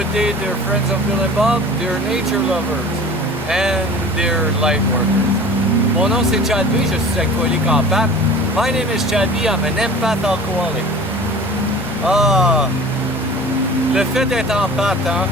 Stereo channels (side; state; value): both; normal; correlation 0.41